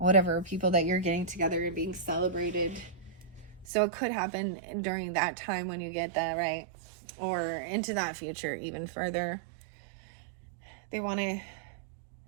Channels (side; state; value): left; drops out; at 3.7 s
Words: people that you're getting together and being celebrated. So it could happen during that time when you get that, right? Or into that future even further. They want to